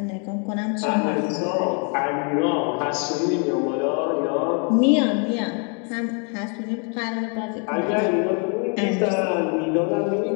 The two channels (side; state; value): right; quieter; 38.4 dB